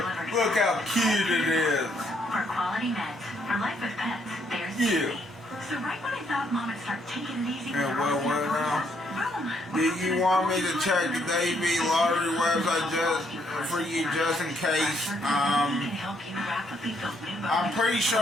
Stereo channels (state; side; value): normal; both; correlation 0.71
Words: Look how cute it is. For quality meds, for life with pets, there's yeah. So right when I thought Mom would start taking it easy. Yeah, well, now? Do you want me to check the Davey lottery website for you just in case? I'm pretty